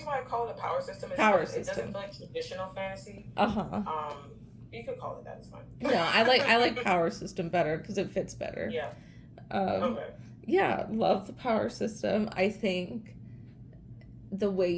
why I call it a power system is Power because it doesn't system. feel like traditional fantasy. Uh-huh. You could call it that. It's fine. No, I like power system better because it fits better. Yeah. Um, Okay. yeah, love the power system. I think the way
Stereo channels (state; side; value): identical; both; correlation 1.00